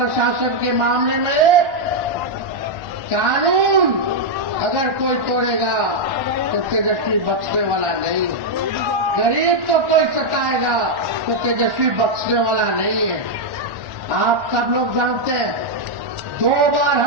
के मामले में कानून अगर कोई तोड़ेगा तो तेजस्वी बख्शने वाला नहीं। गरीब तो कोई सताएगा तो तेजस्वी बख्शने वाला नहीं है। आप सब लोग जानते हैं 2 बार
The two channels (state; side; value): late; left; 1.1 ms